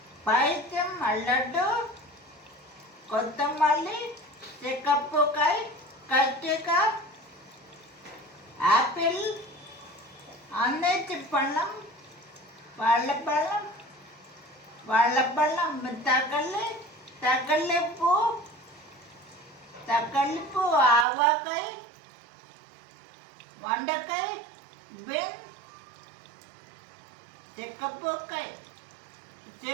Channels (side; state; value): left; drops out; at 21.1 s